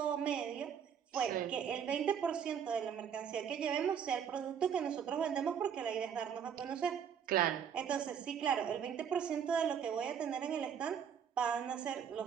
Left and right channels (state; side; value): quieter; left; 7.9 dB